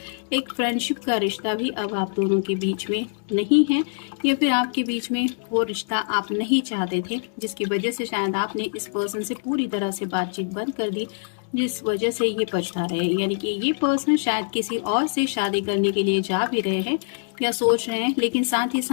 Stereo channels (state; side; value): silent; right; digital silence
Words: एक फ्रेंडशिप का रिश्ता भी अब आप दोनों के बीच में नहीं है, या फिर आपके बीच में वो रिश्ता आप नहीं चाहते थे, जिसकी वजह से शायद आपने इस पर्सन से पूरी तरह से बातचीत बंद कर दी, जिस वजह से ये पछता रहे हैं। यानी कि ये पर्सन शायद किसी और से शादी करने के लिए जा भी रहे हैं या सोच रहे हैं, लेकिन साथ ही